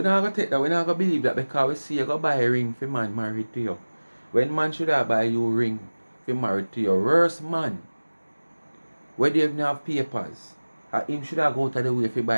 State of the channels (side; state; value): both; inverted; correlation -1.00